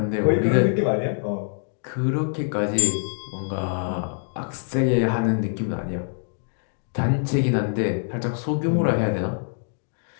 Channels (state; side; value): silent; right; digital silence